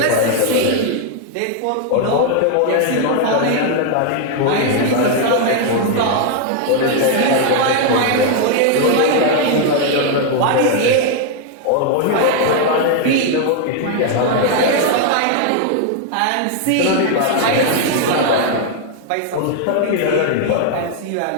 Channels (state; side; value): different; both; correlation 0.00